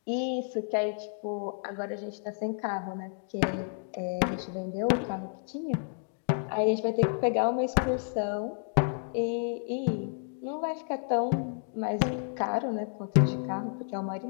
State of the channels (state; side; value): silent; right; 57 dB below the other